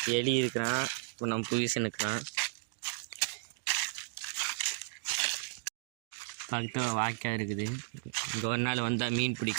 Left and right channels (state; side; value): silent; left; digital silence